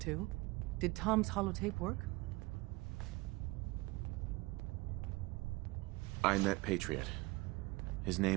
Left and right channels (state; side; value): quieter; left; 22.6 dB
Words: Did Tom's holotape work? I met Patriot. His